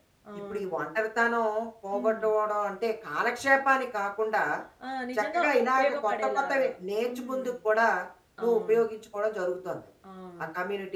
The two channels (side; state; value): both; identical; correlation 1.00